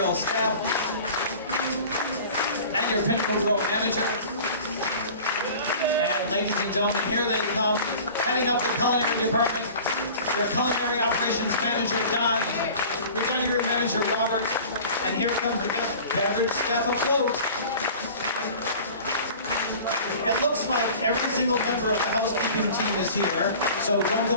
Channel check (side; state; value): both; inverted; correlation -0.42